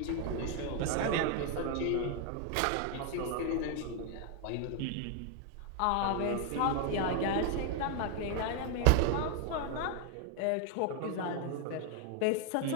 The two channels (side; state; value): both; different; correlation 0.00